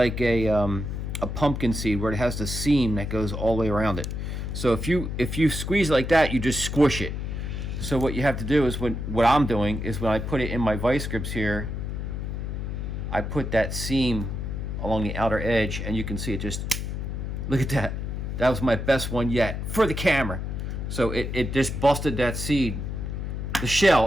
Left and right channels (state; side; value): noise; left; hum, 4 dB below the sound